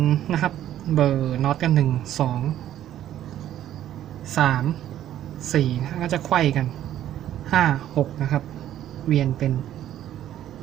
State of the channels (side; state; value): left; quieter; 11.9 dB